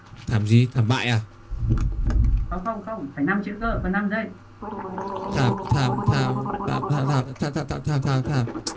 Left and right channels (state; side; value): identical; both; correlation 1.00